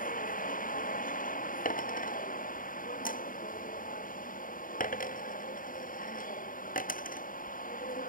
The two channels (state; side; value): late; right; 0.40 ms